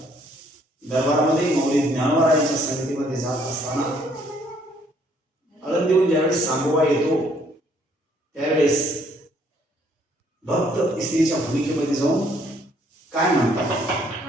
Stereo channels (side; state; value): both; normal; correlation 0.65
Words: दरबारामध्ये मौली ज्ञानवरायांच्या संगतीमध्ये जात असताना आनंद देऊन ज्यावेळेस सांगोबा येतो त्यावेळेस भक्त स्त्रीच्या भूमिकेमध्ये जाऊन काय म्हणतात,